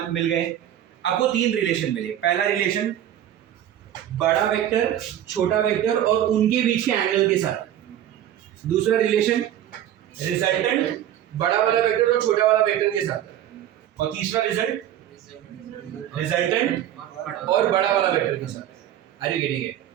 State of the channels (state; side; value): quieter; left; 11.4 dB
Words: मिल गए? आपको 3 रिलेशन मिले। पहला रिलेशन बड़ा वेक्टर, छोटा वेक्टर और उनके बीच के एंगल के साथ। दूसरा रिलेशन रिजल्टेंट बड़ा वाला वेक्टर और छोटा वाला वेक्टर के साथ। और तीसरा रिजल्ट रिजल्टेंट और बड़ा वाला वेक्टर के साथ। Are you getting it?